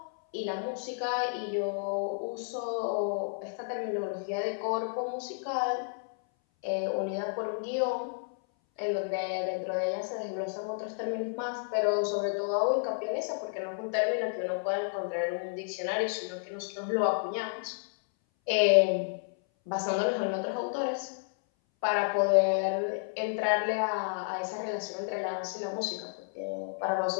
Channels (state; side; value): silent; right; 57 dB below the other